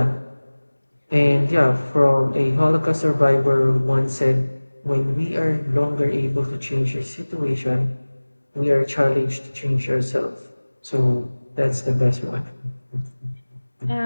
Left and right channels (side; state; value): both; inverted; correlation -1.00